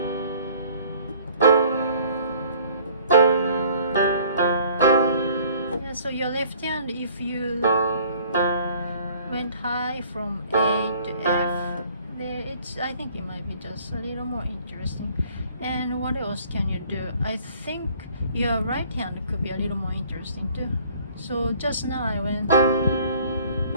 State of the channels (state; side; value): inverted; both; correlation -0.55